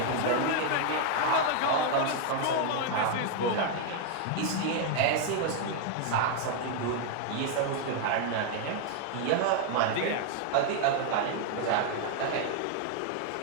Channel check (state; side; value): different; both; correlation 0.00